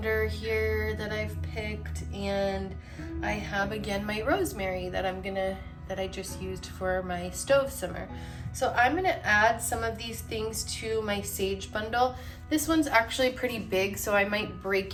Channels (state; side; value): identical; both; correlation 1.00